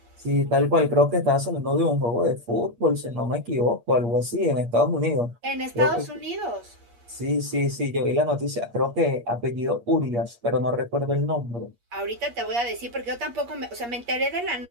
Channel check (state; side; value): late; left; 8.5 ms